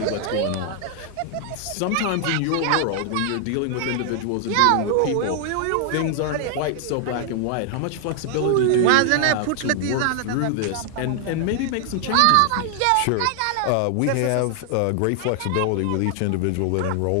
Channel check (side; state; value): both; different; correlation 0.00